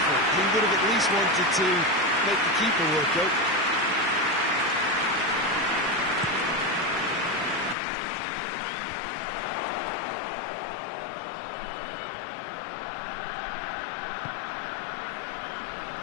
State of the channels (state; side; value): drops out; right; at 7.8 s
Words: He would have at least wanted to make the keeper work, though.